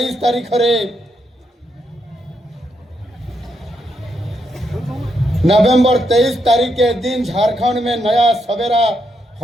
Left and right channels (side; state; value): both; normal; correlation 0.79